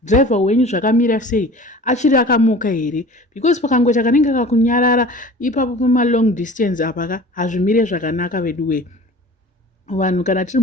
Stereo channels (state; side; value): normal; both; correlation 0.42